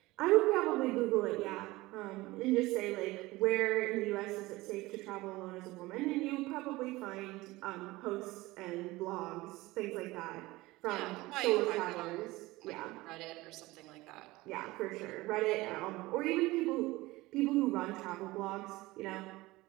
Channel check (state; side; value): quieter; left; 19.9 dB